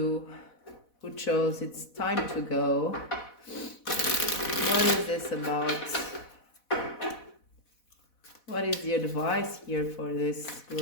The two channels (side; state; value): right; late; 4.1 ms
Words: who chose it's time to go. What is this about? What is the advice here for this